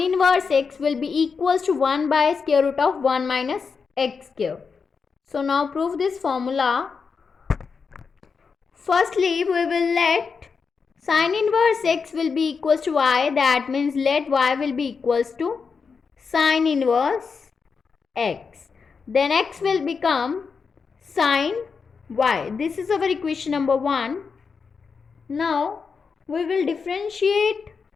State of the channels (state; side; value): quieter; right; 5.4 dB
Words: inverse x will be equals to 1 by square root of 1 minus x square. So now prove this formula. Firstly, we will let sin inverse x will be equals to y. That means let y will be equals to sin inverse x. Then x will become sin y. This is our equation number 1. Now we will differentiate